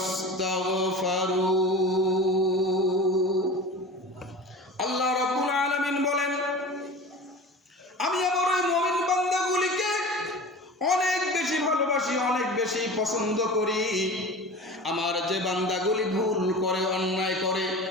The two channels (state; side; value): normal; both; correlation 0.35